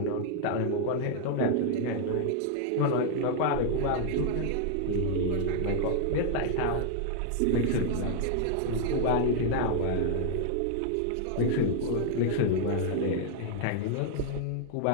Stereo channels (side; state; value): both; different; correlation 0.00